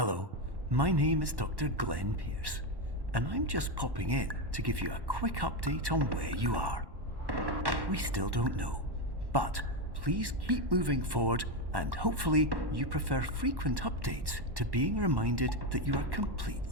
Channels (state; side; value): late; left; 1.1 ms